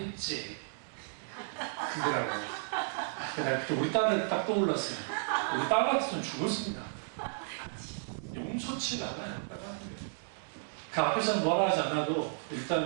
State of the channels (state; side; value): silent; left; digital silence